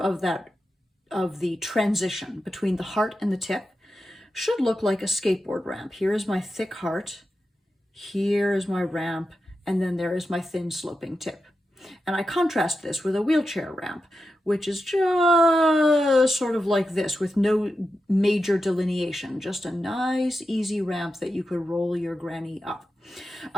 the transition between the heart and the tip should look like a skateboard ramp. Here is my thick heart, here is my ramp, and then there is my thin sloping tip. And I contrast this with a wheelchair ramp, which is just sort of like this, with no major delineation, just a nice, easy ramp that you could roll your granny up.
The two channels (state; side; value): normal; both; correlation 0.90